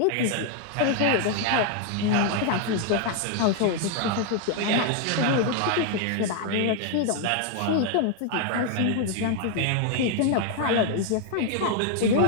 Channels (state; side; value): different; both; correlation 0.00